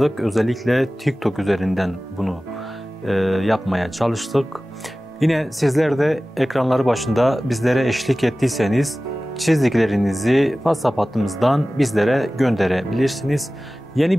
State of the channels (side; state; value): both; normal; correlation 0.97